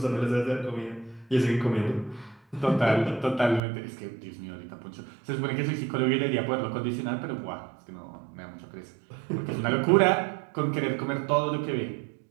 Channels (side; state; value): left; drops out; at 3.6 s